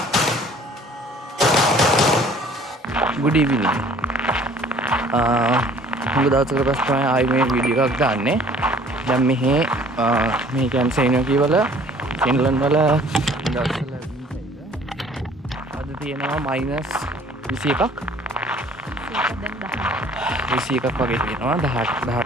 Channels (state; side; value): normal; both; correlation 0.54